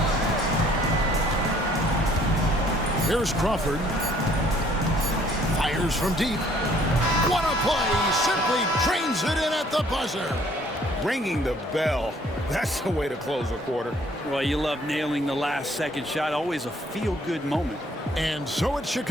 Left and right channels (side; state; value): both; normal; correlation 0.60